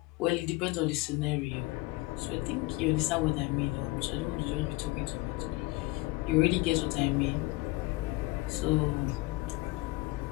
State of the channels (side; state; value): right; quieter; 22.0 dB